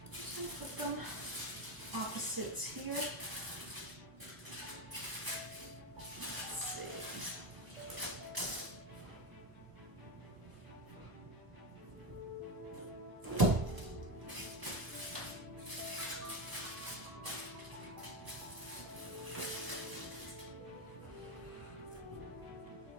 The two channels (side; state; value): left; late; 1.2 ms